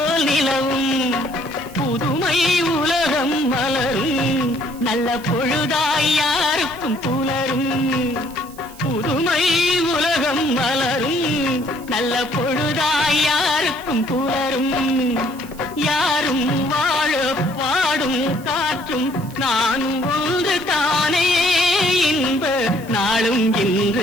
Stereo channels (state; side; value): noise; right; hiss, 21 dB below the sound